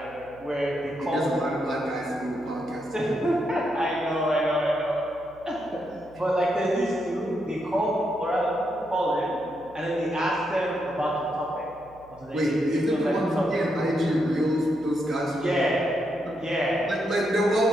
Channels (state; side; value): noise; right; hum, 25 dB below the sound